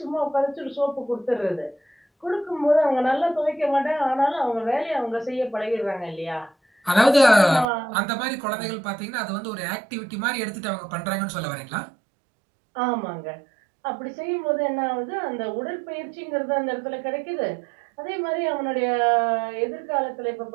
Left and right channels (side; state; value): left; drops out; at 7.7 s